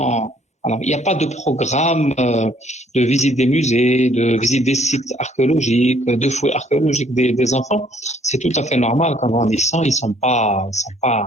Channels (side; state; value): both; normal; correlation 0.62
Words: Alors, il n'y a pas de programme de visite des musées, de visite des sites archéologiques, de fouilles archéologiques des enfants. C'est tout à fait normal qu'en grandissant, ils sont pas,